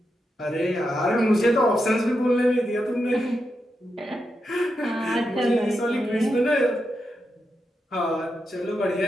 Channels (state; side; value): normal; both; correlation 0.86